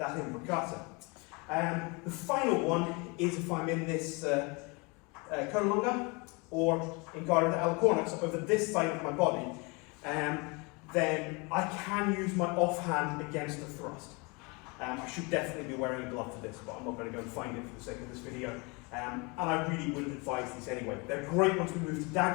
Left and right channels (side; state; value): right; quieter; 29.0 dB